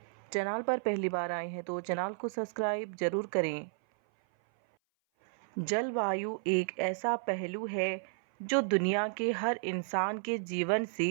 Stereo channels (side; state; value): left; silent; 56 dB below the other